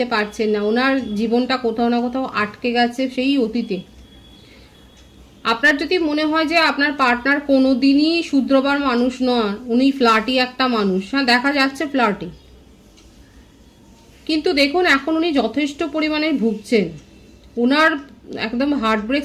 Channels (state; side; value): identical; both; correlation 1.00